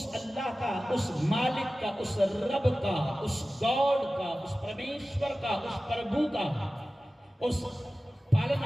اللہ کا، اس مالک کا، اس رب کا، اس گاڈ کا، اس پرمیشور کا، اس پربھو کا، اس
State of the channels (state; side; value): normal; both; correlation 0.96